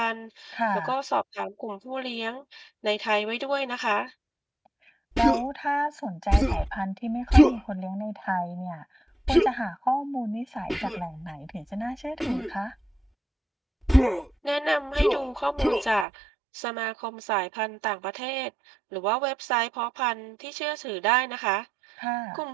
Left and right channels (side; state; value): left; drops out; at 16.1 s